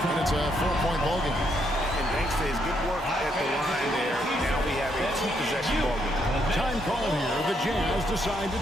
it's a 4-point ball game. And thanks to his good work at the line there, now we have a 2-possession ball game. Time call here. The Jazz decide to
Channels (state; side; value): normal; both; correlation 0.75